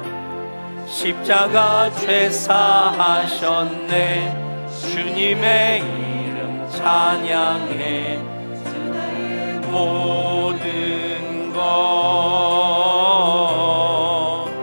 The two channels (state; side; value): inverted; both; correlation -1.00